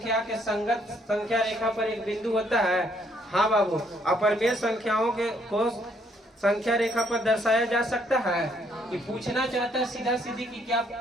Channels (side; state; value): both; normal; correlation 0.69